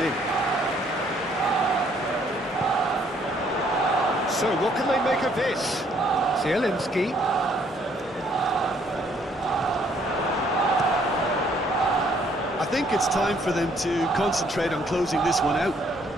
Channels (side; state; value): both; normal; correlation 0.65